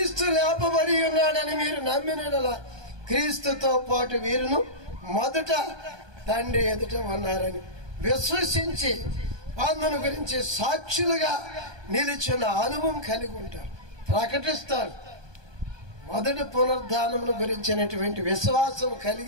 లేపబడి ఉన్నాడని మీరు నమ్మినలా క్రీస్తుతో పాటు వీరును మొదట తండ్రి ఎదుట ఉన్నారని విశ్వసించి అందును గురించి సాక్షులుగా నిలిచిన అనుభవం కలిగి ఉంటారు, ప్రకటిస్తారు. మొదటి పునరుద్ధానమును గురించినటువంటి విశ్వాసం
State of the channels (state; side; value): late; left; 1.2 ms